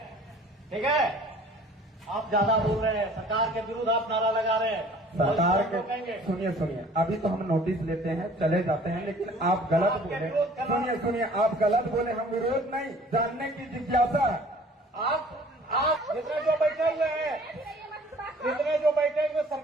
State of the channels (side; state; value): both; normal; correlation 0.51